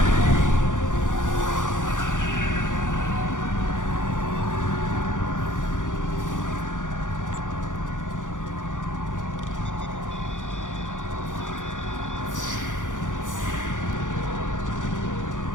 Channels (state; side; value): late; right; 0.87 ms